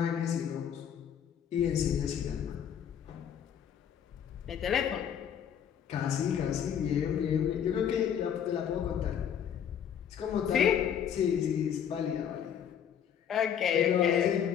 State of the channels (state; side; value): quieter; right; 8.7 dB